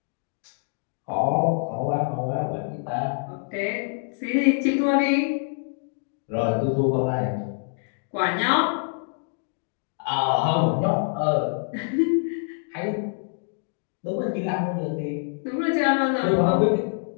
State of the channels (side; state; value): right; silent; digital silence